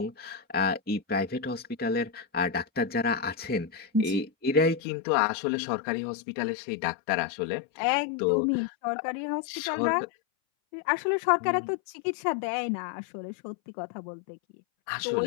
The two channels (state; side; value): drops out; right; at 4.8 s